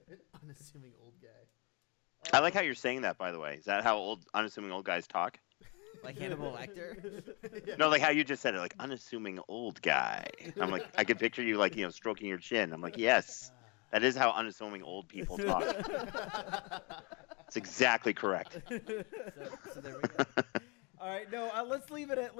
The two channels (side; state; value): right; quieter; 29.8 dB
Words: unassuming old guy. I like how you're saying that, by the way. Is that how unassuming old guys talk? Like Hannibal Lecter? Yeah. No, like how you just said it, like unassuming old guy. I'm like, I could picture you like, stroking your chin. I'm like, yes, that is how unassuming old people talk. It's exactly correct. So there we go. All right, no, let's leave it